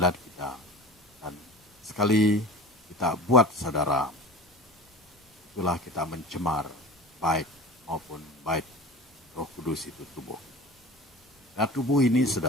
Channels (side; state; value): both; normal; correlation 0.36